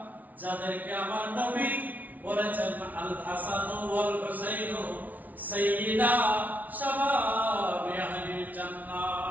যাদেরকে আমার নবী বলেছেন আল হাসান ওয়াল হুসাইন সাইয়্যিদা শাবাবি আহলিল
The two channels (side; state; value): left; late; 0.076 ms